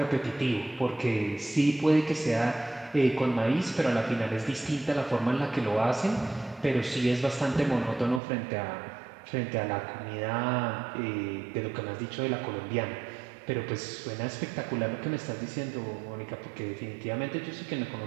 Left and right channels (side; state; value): left; drops out; at 8.2 s